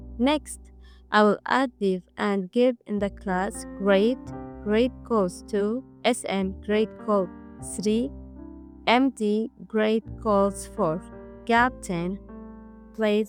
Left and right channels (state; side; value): identical; both; correlation 1.00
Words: Next, I will add div and give in the class grade calls 2, SM grade call 3, MD grade calls 4, gap 10,